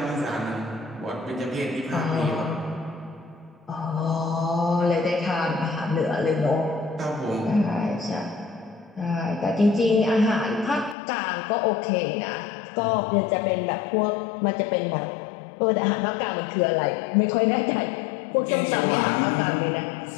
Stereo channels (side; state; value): right; drops out; at 11.0 s